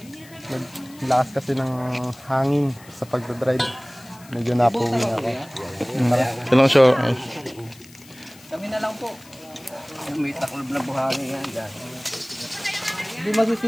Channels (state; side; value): noise; left; hiss, 23 dB below the sound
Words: Lakas kasi ng hangin sa pagdadrive. Medyo napuwi na ako. Ilang show? Kami na lang po. May taklob na buhangin yan dyan. Hindi